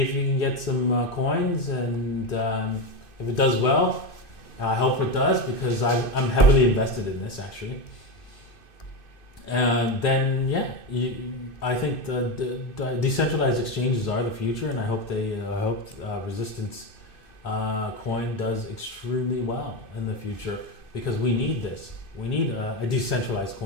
you can get some coins, and if it does well, I hope it does, because I'm heavily invested in this actually. Then yeah, I think the decentralized exchanges are the future, and I hope Resistance coin does extremely well in the future, because we need this. We need a decentralized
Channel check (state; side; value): late; right; 2.5 ms